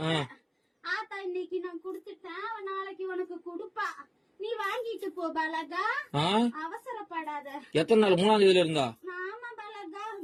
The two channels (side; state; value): both; identical; correlation 1.00